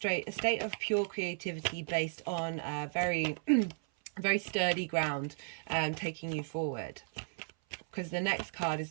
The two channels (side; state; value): left; silent; 55 dB below the other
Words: of pure creativity based on very very sturdy ground, taking you forward. Because the next card is